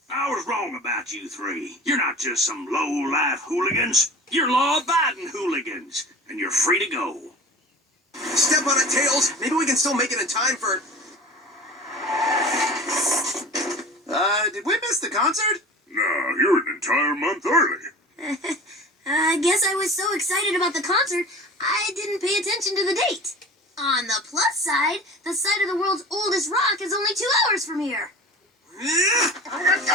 I was wrong about you three. You're not just some low-life hooligans. You're law-abiding hooligans, and you're free to go. Step on it, Tails. Maybe we can still make it in time for... did we miss the concert? No, you're an entire month early. I guess I was so excited about the concert, I didn't pay attention to the date. On the plus side, the site of the world's oldest rock is only 2 hours from here.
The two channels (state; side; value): normal; both; correlation 0.38